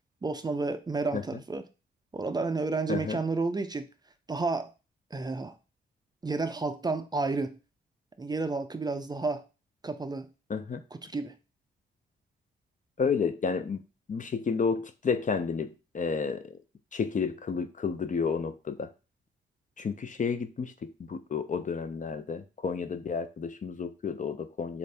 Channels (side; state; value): both; normal; correlation 0.56